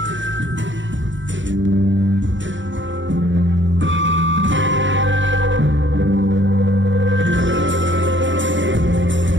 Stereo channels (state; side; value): late; left; 0.55 ms